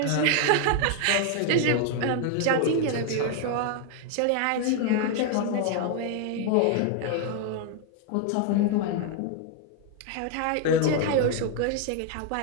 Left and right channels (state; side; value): different; both; correlation 0.00